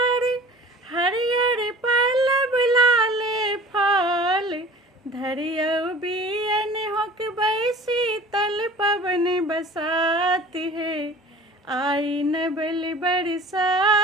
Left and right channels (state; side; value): normal; both; correlation 0.43